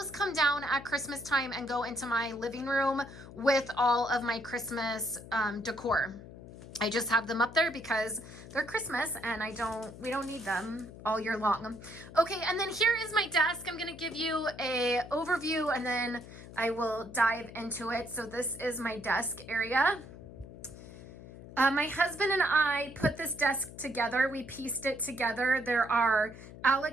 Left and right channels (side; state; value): left; noise; hum, 15 dB below the sound